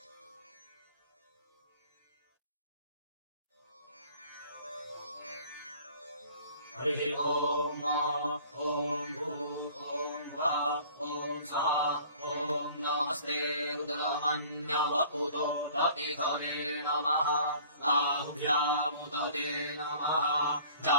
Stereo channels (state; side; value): inverted; both; correlation -0.49